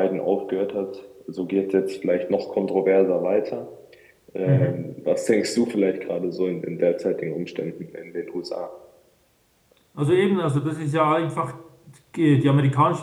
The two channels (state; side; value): identical; both; correlation 1.00